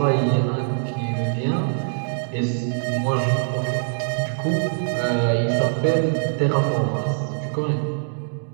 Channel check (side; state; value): left; silent; 63 dB below the other